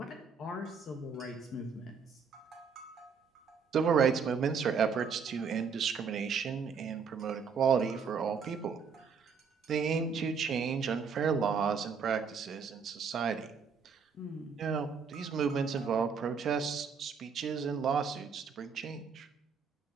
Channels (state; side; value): quieter; left; 5.9 dB